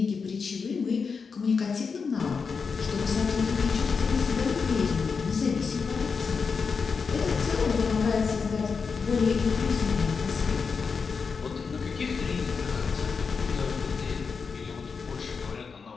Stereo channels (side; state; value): right; quieter; 5.3 dB